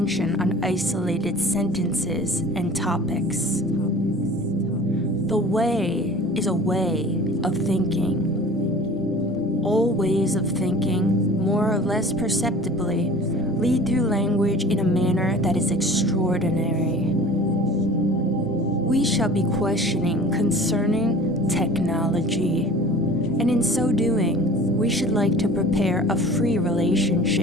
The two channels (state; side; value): normal; both; correlation 0.43